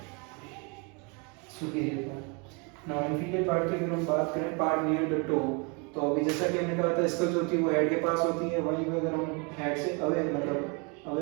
superior part. Now inferior part की अगर हम बात करें, पार्ट नियर द टो, तो अभी जैसा कि हमने कहा था स्कल जो होती है वो हेड के पास होती है, वहीं पे अगर हम हेड से अवे मतलब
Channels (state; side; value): quieter; left; 32.4 dB